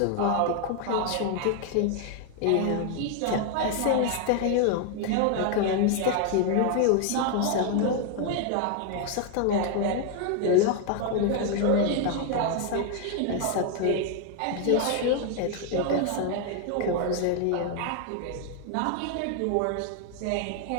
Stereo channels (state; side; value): different; both; correlation 0.00